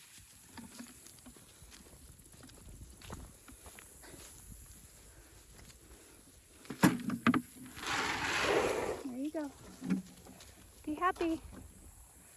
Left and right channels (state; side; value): identical; both; correlation 1.00